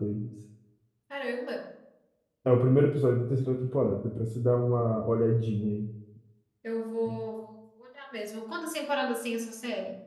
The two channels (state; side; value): identical; both; correlation 1.00